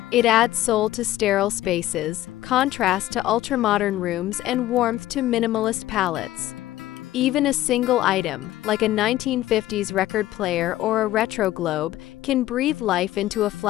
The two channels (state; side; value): quieter; right; 14.8 dB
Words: It adds soul to sterile spaces, contrast to ultra-modern rooms, and warmth to minimalist palettes. Even a single item, like a 1950s record player or a retro globe, can breathe life into a